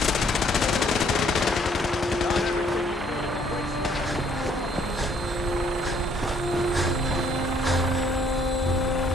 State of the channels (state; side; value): normal; both; correlation 0.64